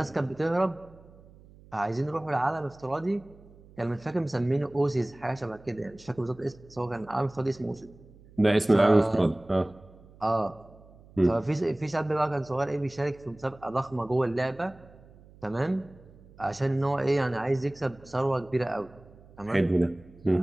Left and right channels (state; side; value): noise; right; hum, 23 dB below the sound